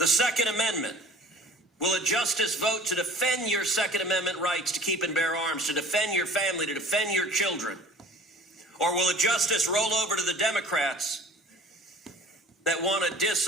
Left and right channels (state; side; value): normal; both; correlation 0.46